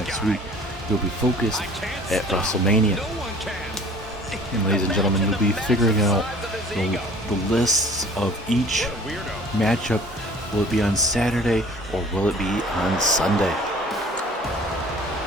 week, he'll be focused at WrestleMania. And ladies and gentlemen, you'll be figuring out the lists of each matchup. Will it be on Saturday or will it be on Sunday?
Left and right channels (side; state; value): both; normal; correlation 0.49